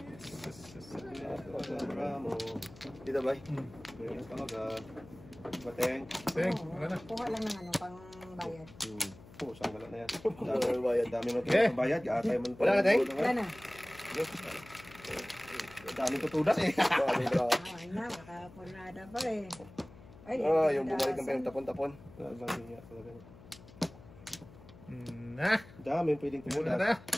Bravo. Dito ba? Meron talaga. Bateng. Teng, Oo, wala na. Kuha lang ng ano, pang bayad. Oo, saan wala na yan. Dami bayad. Dami mo Okay. bayad. Atay mo. Wala na, Teng? Wala na. Dami tutudas eh. Dami bro. Ay na, makapurnada pa eh. Ay, Yung bumalik ng payong tapon-tapon. Dami niya talaga. Na. Dami pwedeng Wala tutudas. na.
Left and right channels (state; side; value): noise; left; hum, 20 dB below the sound